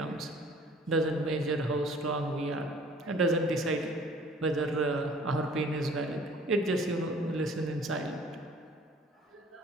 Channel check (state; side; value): normal; both; correlation 0.52